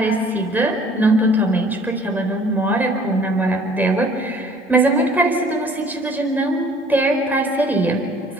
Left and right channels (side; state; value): both; normal; correlation 0.55